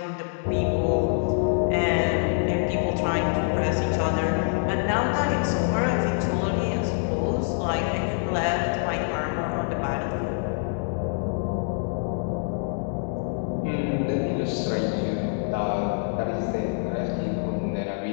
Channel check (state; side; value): silent; right; 61 dB below the other